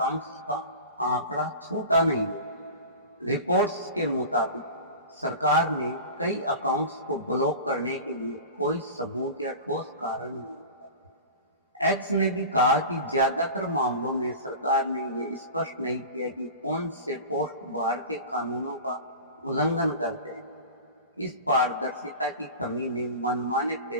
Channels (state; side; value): inverted; both; correlation -0.33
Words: का आंकड़ा छोटा नहीं है। रिपोर्ट्स के मुताबिक सरकार ने कई अकाउंट्स को ब्लॉक करने के लिए कोई सबूत या ठोस कारण नहीं दिया। एक्स ने भी कहा कि ज्यादातर मामलों में सरकार ने ये स्पष्ट नहीं किया कि कौन से पोस्ट भारतीय कानूनों का उल्लंघन करते हैं। इस पारदर्शिता की कमी ने मनमाने